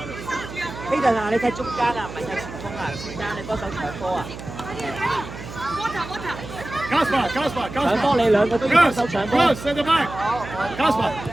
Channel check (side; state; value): right; noise; hum, 12 dB below the sound